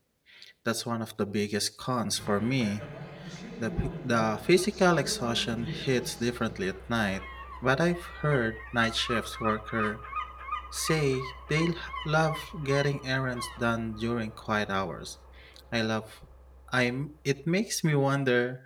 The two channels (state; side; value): identical; both; correlation 1.00